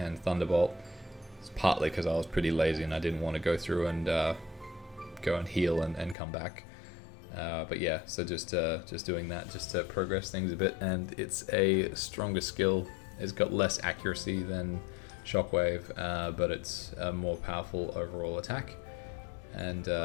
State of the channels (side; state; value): right; drops out; at 6.2 s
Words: Thunderbolt. It's partly because I was pretty lazy and I didn't want to go through and go and heal and come back. But yeah, so just doing that just to progress things a bit. And it's a stronger skill. It's got less accuracy than Shockwave, but it's a more powerful overall attack. And